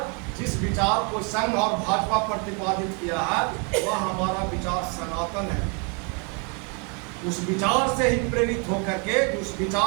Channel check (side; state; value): left; quieter; 35.5 dB